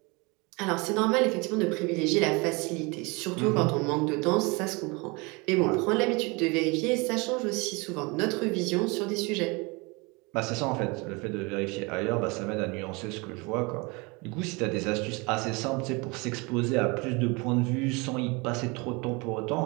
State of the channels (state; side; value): quieter; left; 27.5 dB